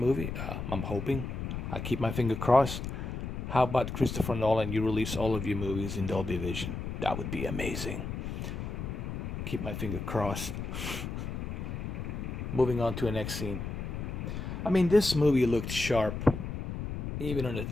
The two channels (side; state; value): left; noise; rumble, 5 dB below the sound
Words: I'm hoping. I keep my finger crossed. How about Christopher Nolan? You release all of your movies in Dolby Vision. That would be amazing. Keep my finger crossed. Moving on to the next scene. I mean, this movie looked sharp, even